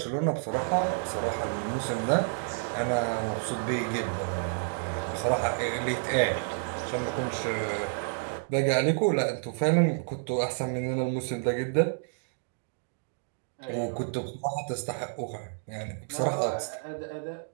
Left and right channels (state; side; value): silent; left; digital silence